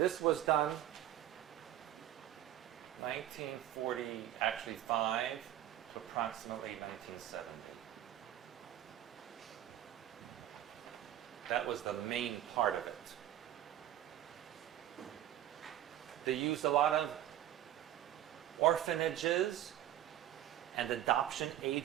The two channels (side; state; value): left; quieter; 12.3 dB